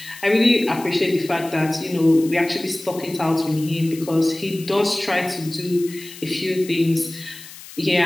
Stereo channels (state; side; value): noise; left; hiss, 16 dB below the sound